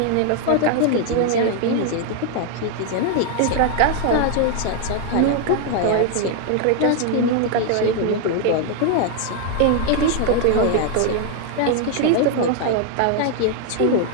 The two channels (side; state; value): both; different; correlation 0.00